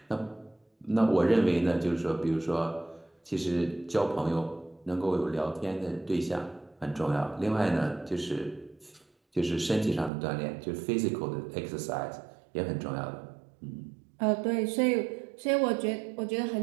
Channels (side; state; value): left; drops out; at 10.1 s